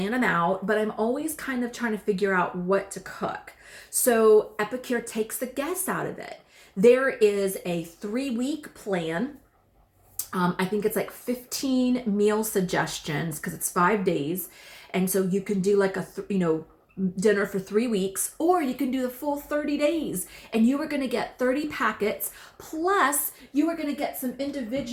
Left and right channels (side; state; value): both; identical; correlation 1.00